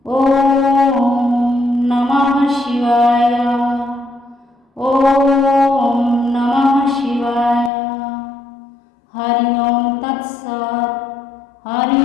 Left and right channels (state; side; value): drops out; right; at 7.7 s